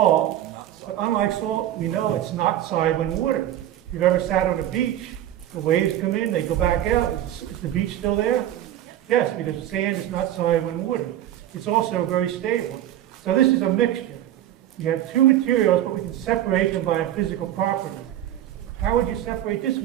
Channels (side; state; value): left; quieter; 12.3 dB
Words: but unlike salt, we know it's not soluble in water. If you've ever sat on a beach, the waves come in, they go back out. Is the beach still there? Yes, because sand is not soluble in water. It's also very stable. So this is a mixture. You have two materials, but we can separate them by a physical property. How would you separate this